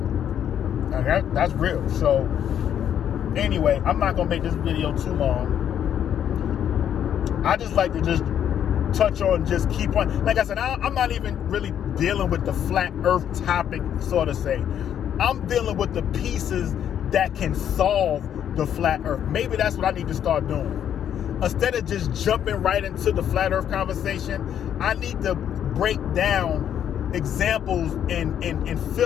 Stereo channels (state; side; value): quieter; right; 9.6 dB